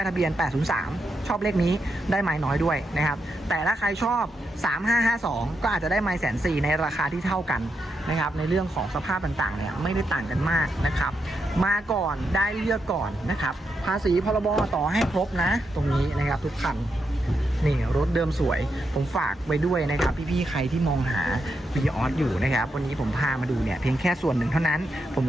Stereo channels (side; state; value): both; normal; correlation 0.84